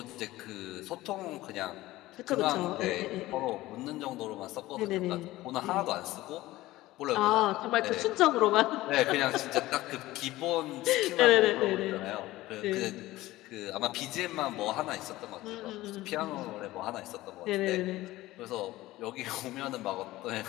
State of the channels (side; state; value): right; quieter; 17.4 dB